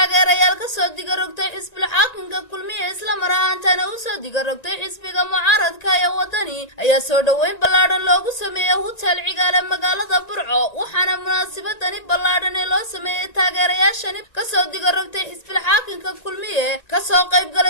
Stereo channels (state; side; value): late; right; 1.9 ms